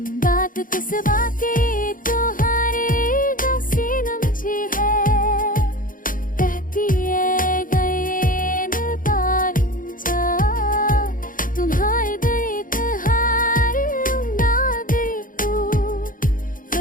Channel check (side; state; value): right; late; 0.40 ms